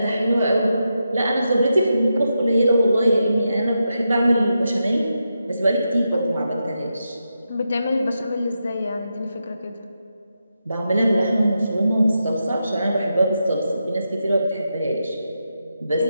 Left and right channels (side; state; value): both; inverted; correlation -0.86